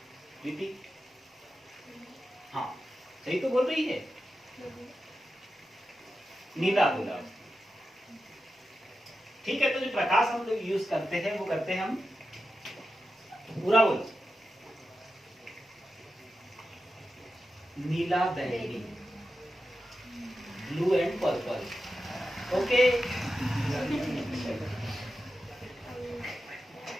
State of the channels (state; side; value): normal; both; correlation 0.90